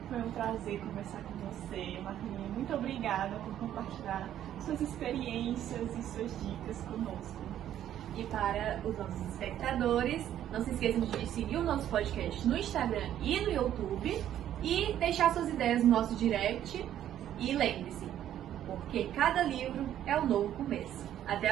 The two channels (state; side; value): quieter; left; 11.2 dB